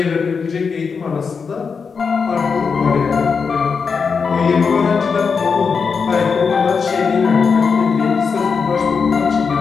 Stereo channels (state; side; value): quieter; right; 5.5 dB